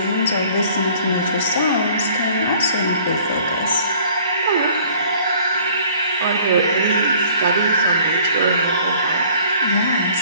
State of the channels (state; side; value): inverted; both; correlation -0.55